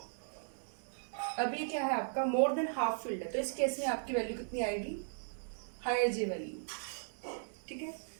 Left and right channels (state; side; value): silent; left; digital silence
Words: अभी क्या है आपका मोर देन हाफ फील्ड है, तो इस केस में आपकी वैल्यू कितनी आएगी हायर J वैल्यू। ठीक है,